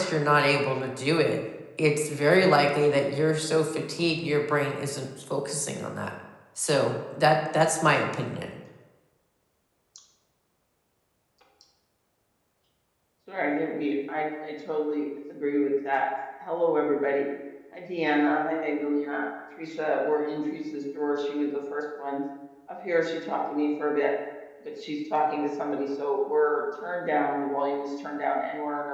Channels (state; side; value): identical; both; correlation 1.00